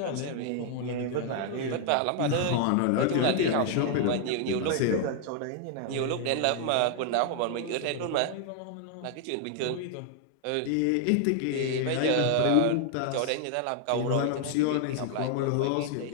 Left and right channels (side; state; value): both; different; correlation 0.00